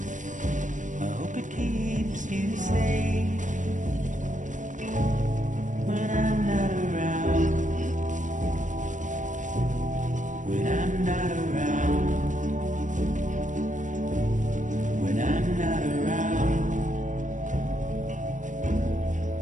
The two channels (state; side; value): late; left; 0.37 ms